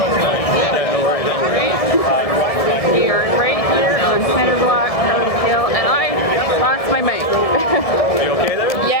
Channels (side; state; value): right; late; 1.7 ms